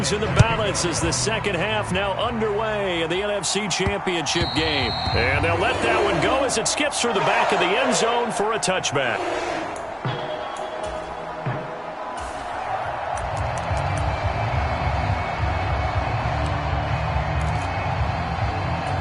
in the balance as the second half now underway in the NFC Championship game. And they'll let that one go as it skips through the back of the end zone for a touchback.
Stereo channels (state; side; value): identical; both; correlation 1.00